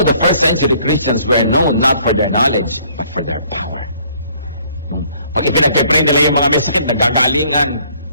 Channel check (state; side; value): inverted; both; correlation -0.61